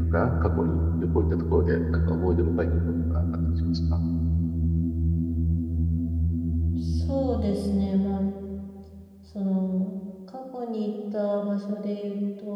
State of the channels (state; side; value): identical; both; correlation 1.00